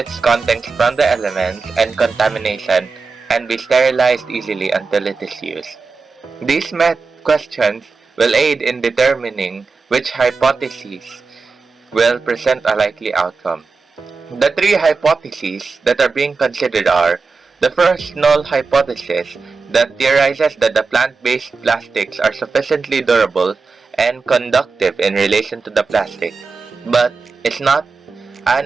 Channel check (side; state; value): left; quieter; 4.5 dB